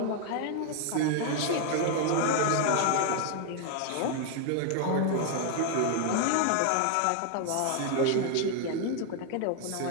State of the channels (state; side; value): different; both; correlation 0.00